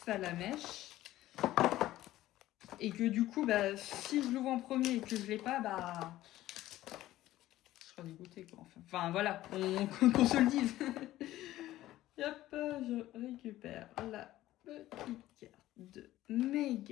Salamèche. Et que du coup, si je l'ouvre en premier et que je l'ai pas, je serai dégoûté quoi. Enfin voilà, qu'on se le dise. Hop, je récupère la petite carte de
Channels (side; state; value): right; quieter; 15.1 dB